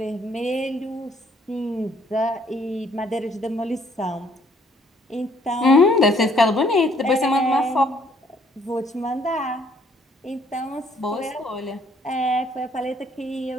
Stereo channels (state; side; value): normal; both; correlation 0.64